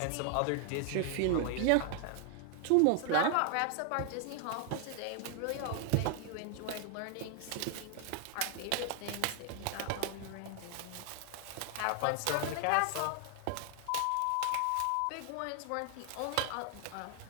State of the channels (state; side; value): different; both; correlation 0.00